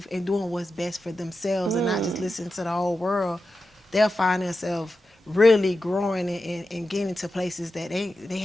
and doing what's best for themselves, and not just listening to the whole world, they'll find themselves really growing and getting to places that they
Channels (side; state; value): both; normal; correlation 0.91